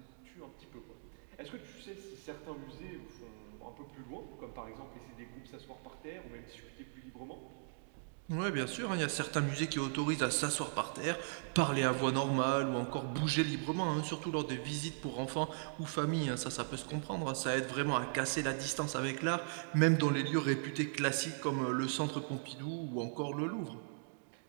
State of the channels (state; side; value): silent; left; digital silence